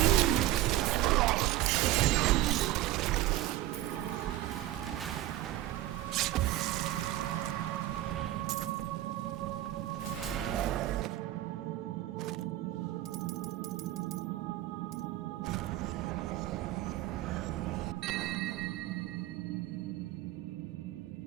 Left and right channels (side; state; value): left; quieter; 14.9 dB